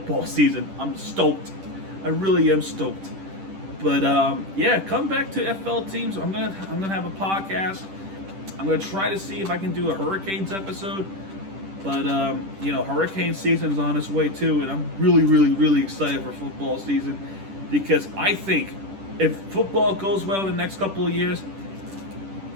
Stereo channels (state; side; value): late; left; 10 ms